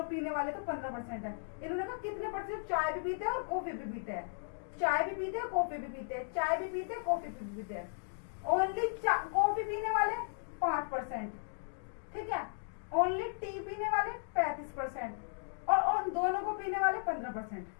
पीने वाले तो 15% है। इन्होंने कहा कितने परसेंट चाय भी पीते हैं और कॉफी भी पीते हैं। चाय भी पीते हैं, कॉफी भी पीते हैं, चाय भी पीते हैं, कॉफी भी पीते हैं। ओनली कॉफी पीने वाले 5%। ठीक है, ओनली टी पीने वाले 35% और उन दोनों को पीने वाले 15%।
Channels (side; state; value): right; silent; digital silence